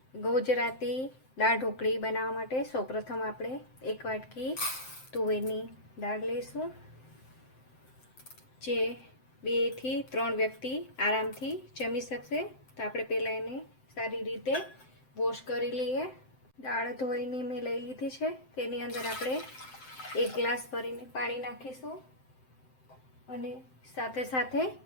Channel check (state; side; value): late; right; 7.7 ms